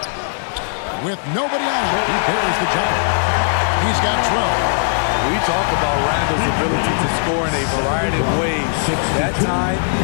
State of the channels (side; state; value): right; silent; digital silence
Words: With nobody on him, he buries the jumper. He's got 12. We talk about Randle's ability to score in a variety of ways. That time,